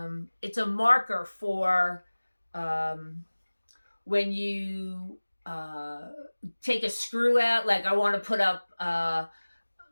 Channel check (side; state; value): both; inverted; correlation -1.00